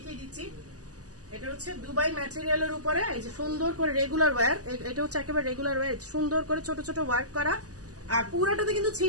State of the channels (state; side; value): late; left; 0.67 ms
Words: দিচ্ছি। এটা হচ্ছে দুবাই ম্যাটেরিয়ালের উপরে এই যে সুন্দর করে রেগুলার ওয়্যার, এটা হচ্ছে একেবারে রেগুলার ওয়্যার, সুন্দর করে ছোট ছোট ওয়ার্ক করা, আর পুরোটাতে কিন্তু